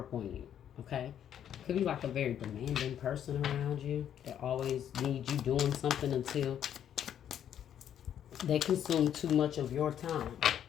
on you. Okay? Could be like a very demanding person around you that always needs you doing something until they consume too much of your time.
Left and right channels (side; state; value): right; quieter; 9.8 dB